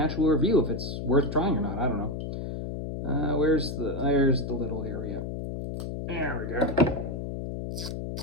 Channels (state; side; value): noise; left; hum, 5 dB below the sound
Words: review if it's worth trying or not? I don't know. There's the little area. There we go.